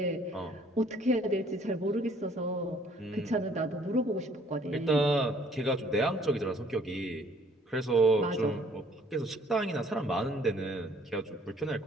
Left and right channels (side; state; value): both; normal; correlation 0.60